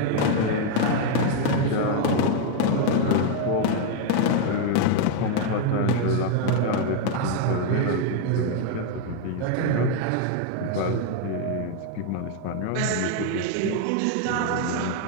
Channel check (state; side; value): different; both; correlation 0.00